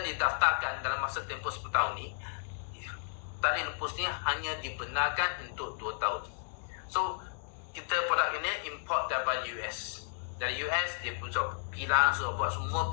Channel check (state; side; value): silent; right; digital silence